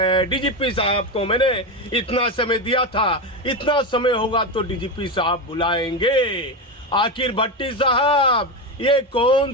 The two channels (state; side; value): normal; both; correlation 0.15